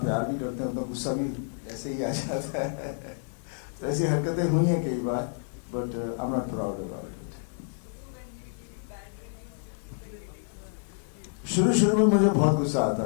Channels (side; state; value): right; silent; digital silence